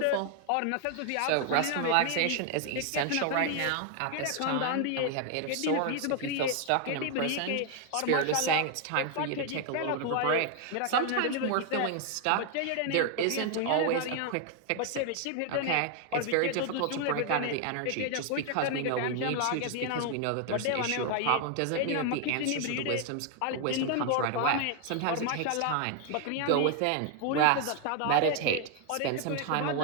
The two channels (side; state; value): both; different; correlation 0.00